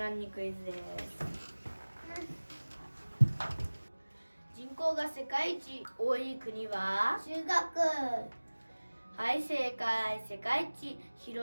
ンにクイズです。人口が世界一多い国は？中国。はい、正解。世界一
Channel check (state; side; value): inverted; both; correlation -1.00